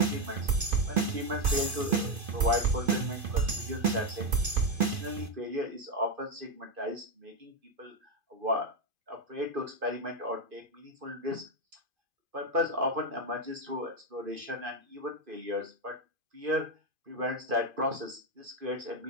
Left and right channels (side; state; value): left; late; 2.5 ms